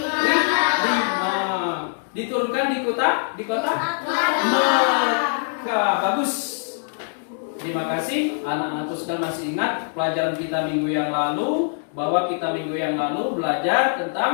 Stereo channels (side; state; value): right; silent; digital silence